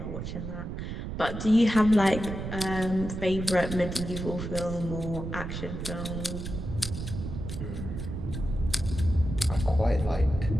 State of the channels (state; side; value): noise; right; rumble, 6 dB below the sound